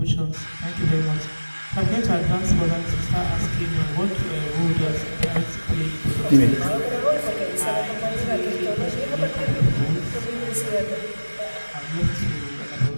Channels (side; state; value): both; inverted; correlation -1.00